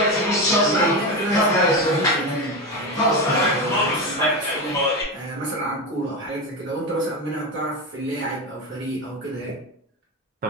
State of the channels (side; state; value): both; normal; correlation 0.17